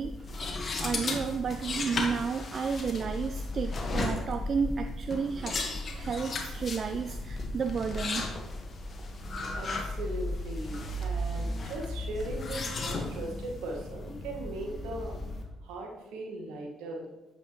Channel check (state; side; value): normal; both; correlation 0.79